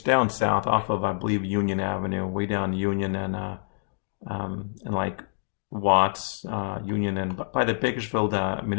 down south off of, I believe, Union Avenue, way down Union and like Watts, Union, and by the Bakersfield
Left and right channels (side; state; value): right; silent; digital silence